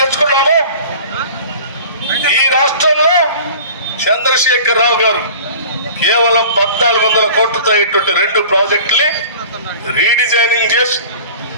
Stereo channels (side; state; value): both; inverted; correlation -0.42